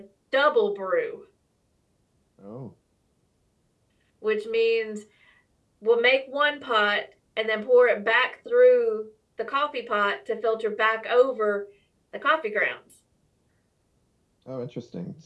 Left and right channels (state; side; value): identical; both; correlation 1.00